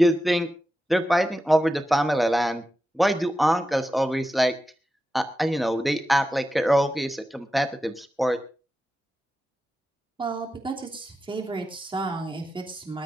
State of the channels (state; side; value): normal; both; correlation 0.91